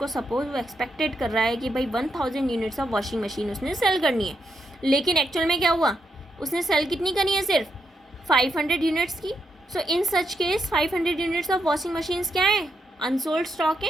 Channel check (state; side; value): normal; both; correlation 0.81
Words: सपोज वो एक्सपेक्टेड कर रहा है कि भाई 1000 यूनिट्स ऑफ वॉशिंग मशीन उसने सेल करनी है, लेकिन एक्चुअल में क्या हुआ? उसने सेल कितनी करनी है, सिर्फ 500 यूनिट्स की. So in such case 500 units of washing machines क्या है, अनसोल्ड स्टॉक